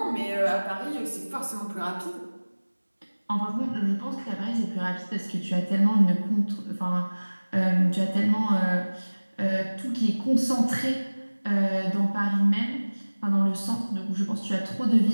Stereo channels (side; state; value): both; inverted; correlation -1.00